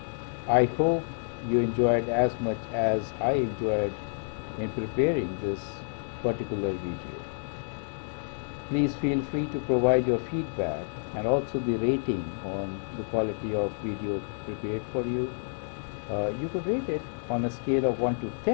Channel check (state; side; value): silent; right; digital silence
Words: I hope you enjoyed as much as I enjoyed in preparing this particular video. Please feel free to provide your feedback and also the rating on the quality of video prepared for you. You could rate it on a scale of 1 to